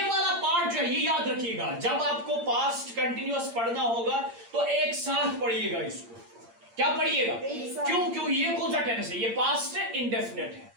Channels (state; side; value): late; left; 8.7 ms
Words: वाला पार्ट जो है ये याद रखिएगा, जब आपको पास्ट कंटिन्यूअस पढ़ना होगा तो एक साथ पढ़िएगा इसको। क्या पढ़िएगा? क्यों ये कौन सा टेंस है? ये पास्ट इंडेफिनिट है।